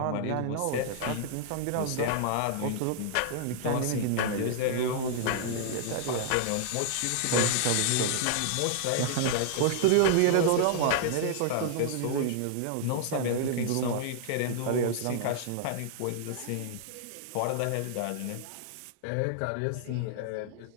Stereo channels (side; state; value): both; different; correlation -0.01